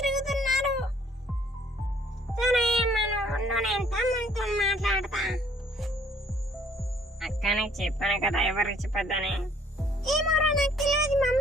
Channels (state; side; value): normal; both; correlation 0.60